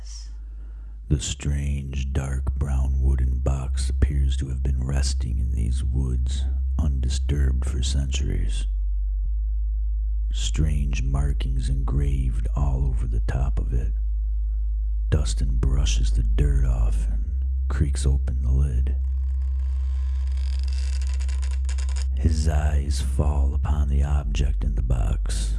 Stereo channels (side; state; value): both; identical; correlation 1.00